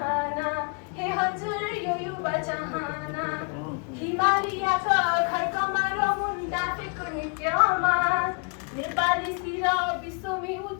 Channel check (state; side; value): quieter; right; 35.1 dB